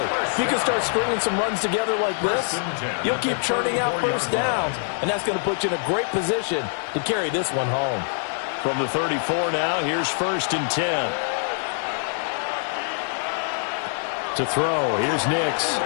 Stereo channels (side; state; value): right; silent; digital silence